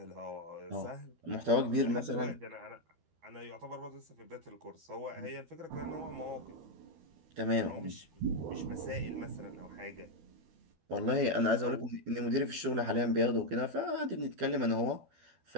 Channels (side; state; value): left; late; 12 ms